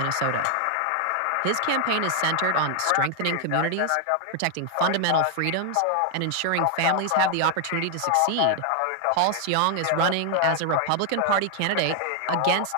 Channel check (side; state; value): both; different; correlation 0.00